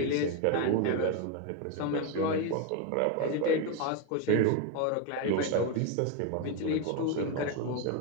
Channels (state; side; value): different; both; correlation 0.02